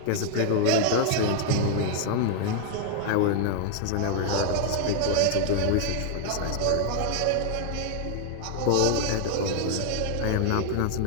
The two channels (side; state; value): both; different; correlation 0.00